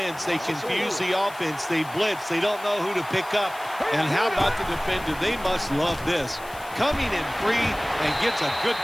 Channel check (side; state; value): left; noise; hiss, 20 dB below the sound